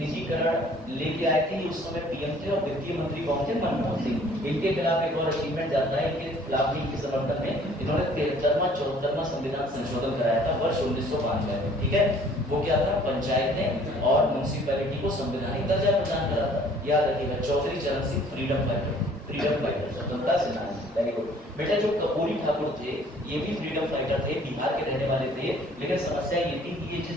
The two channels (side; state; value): both; normal; correlation 0.56